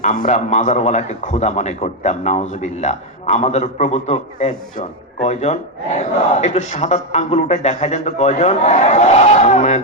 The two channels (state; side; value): normal; both; correlation 0.04